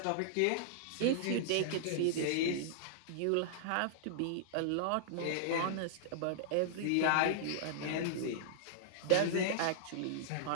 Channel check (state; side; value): different; both; correlation -0.01